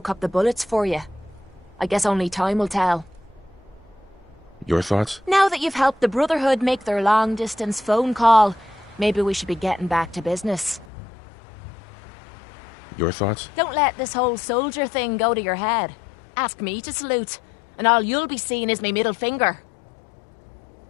up the bullets for you. I guess only time will tell. Your thoughts? Now that you've helped the Brotherhood make their long-distance phone call, maybe we should be getting back to business. Your thoughts? Don't let this whole soldier thing go to your head. Ask me to salute, and all you'll be seeing is my middle finger.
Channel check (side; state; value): right; drops out; at 10.9 s